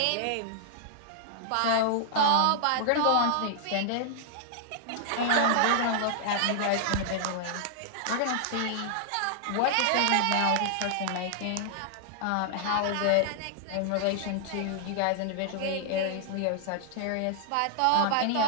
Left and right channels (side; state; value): both; different; correlation -0.01